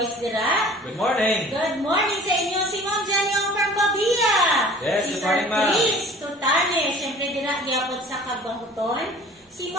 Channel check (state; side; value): normal; both; correlation 0.47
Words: dira. Good morning. Good morning sa inyo. Si Ma'am Janyong from Babia. Yes, si good morning, Ma'am. Chris Tutanes. Siyempre, dira gyapon sa Tagbanguton. Si